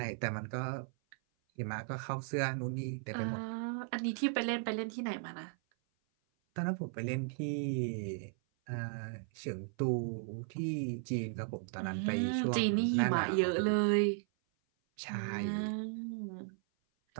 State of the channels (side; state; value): left; silent; 54 dB below the other